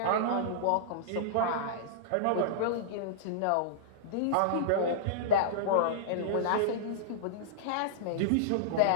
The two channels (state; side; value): different; both; correlation -0.02